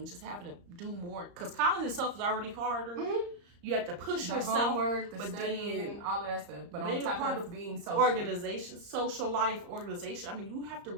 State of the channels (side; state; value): left; late; 34 ms